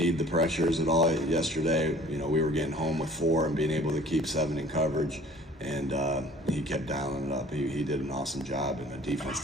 the pressures at all yesterday. We were getting home with 4 and being able to keep 7 in coverage, and he kept dialing it up. He did an awesome job, and the defense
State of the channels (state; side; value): normal; both; correlation 0.50